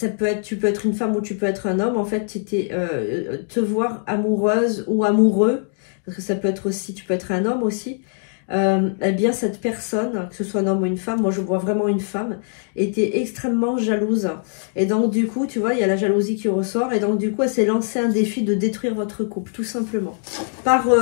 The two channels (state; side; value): silent; right; digital silence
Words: peut être, tu peux être une femme ou tu peux être un homme. En fait, te voir amoureuse ou amoureux, parce que ça peut être aussi, tu peux être un homme aussi. Eh bien cette personne, que ce soit un homme ou une femme, moi je vois vraiment une femme, était extrêmement jalouse. Et donc du coup, tu vois, il y a la jalousie qui ressort. Et donc du coup, elle s'est lancée un défi de détruire votre couple, tout simplement.